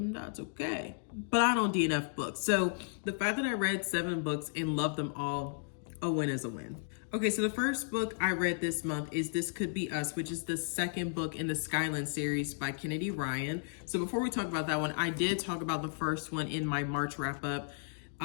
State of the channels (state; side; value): silent; right; digital silence